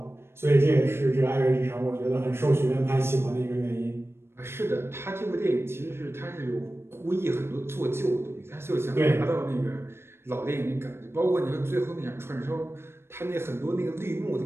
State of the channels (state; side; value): late; left; 0.12 ms